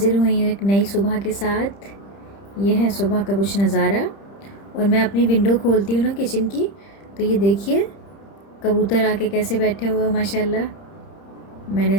हुई हूँ एक नई सुबह के साथ। यह है सुबह का कुछ नज़ारा। और मैं अपनी विंडो खोलती हूँ ना किचन की, तो ये देखिए कबूतर आके कैसे बैठे हुए हो माशाल्लाह। मैंने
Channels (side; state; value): right; late; 30 ms